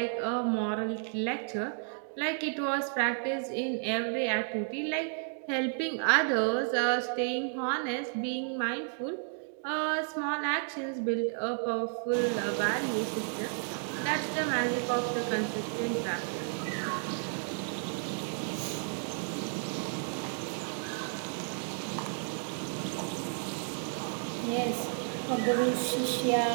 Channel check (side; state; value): left; silent; 56 dB below the other